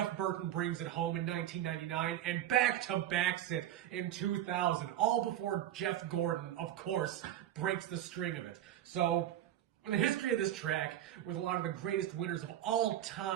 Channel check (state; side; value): quieter; left; 12.0 dB